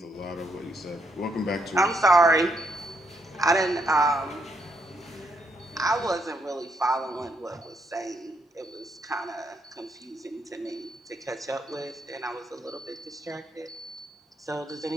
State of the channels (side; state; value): both; normal; correlation 0.76